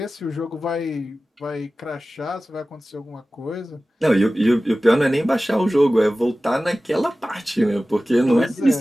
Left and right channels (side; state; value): both; normal; correlation 0.96